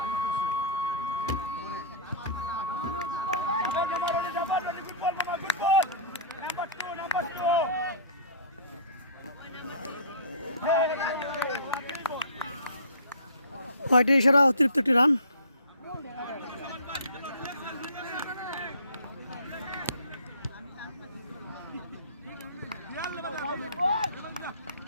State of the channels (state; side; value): inverted; both; correlation -0.39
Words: হোয়াইটের ইশারা, অতিরিক্ত একটি রান।